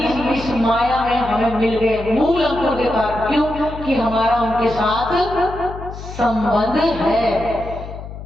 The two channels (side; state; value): left; noise; hum, 11 dB below the sound